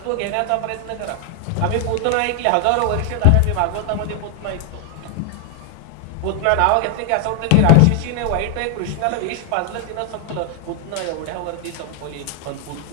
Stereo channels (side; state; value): both; different; correlation 0.00